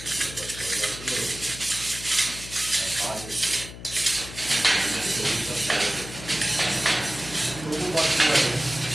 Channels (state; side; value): noise; left; hum, 13 dB below the sound